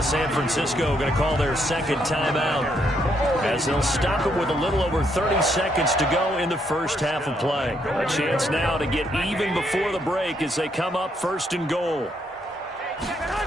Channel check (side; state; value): both; normal; correlation 0.74